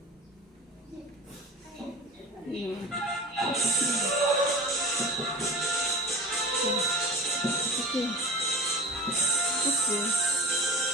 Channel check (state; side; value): normal; both; correlation 0.34